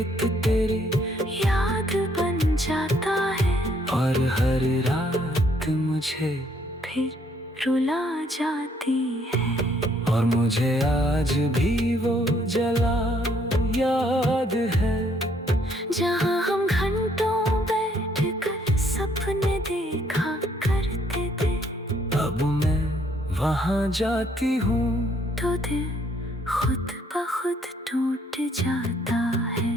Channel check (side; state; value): both; normal; correlation 0.67